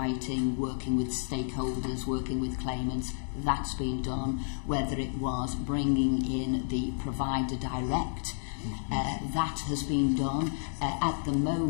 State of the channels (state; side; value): silent; right; 56 dB below the other